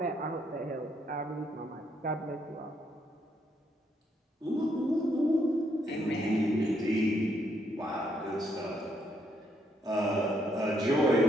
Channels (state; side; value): normal; both; correlation 0.74